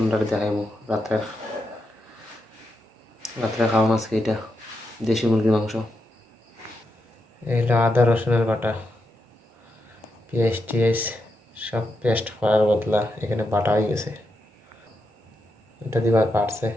দেখাইবো। রাত্রে খাওয়া আজকে এটা দেশি মুরগির মাংস। এইটা আদা রসুনের বাটা, পেঁয়াজ টিয়াজ সব পেস্ট করার বদলা এখানে বাটা হয়ে গেছে। এটা দিবার পারছে,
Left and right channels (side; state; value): both; normal; correlation 0.85